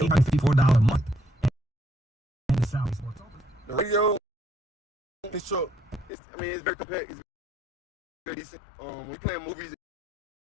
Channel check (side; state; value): right; drops out; at 6.1 s